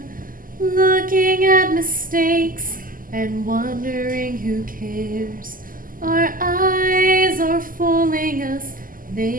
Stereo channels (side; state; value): left; late; 0.41 ms